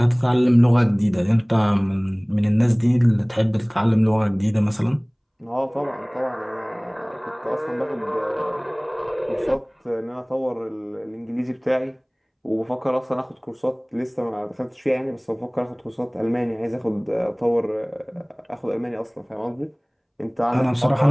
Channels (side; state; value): both; identical; correlation 1.00